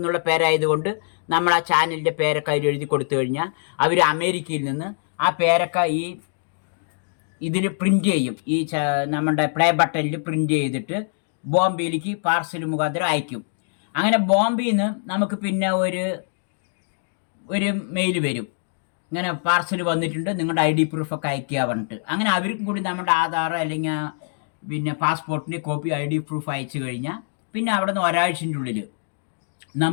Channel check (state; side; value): silent; right; digital silence